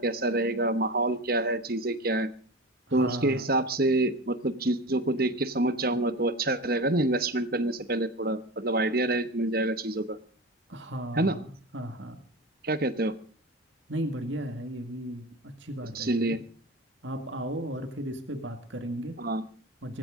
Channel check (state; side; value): normal; both; correlation 0.28